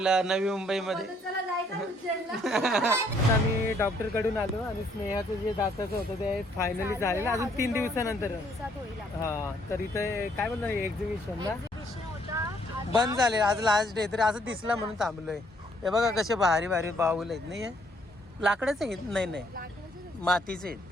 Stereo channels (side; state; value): both; normal; correlation 0.67